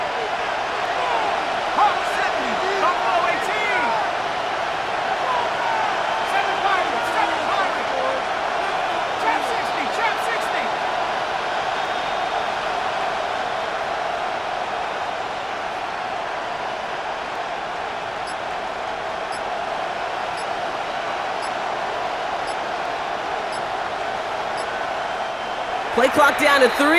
Play clock down to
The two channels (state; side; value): identical; both; correlation 1.00